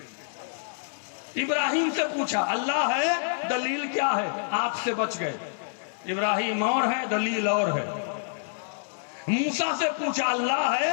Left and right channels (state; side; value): silent; right; 60 dB below the other